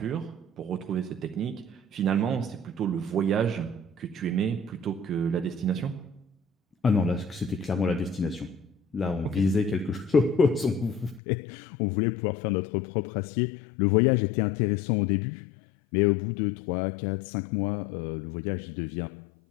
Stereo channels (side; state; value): right; drops out; at 11.2 s